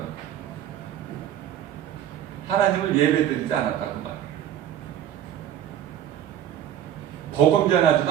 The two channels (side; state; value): left; quieter; 10.7 dB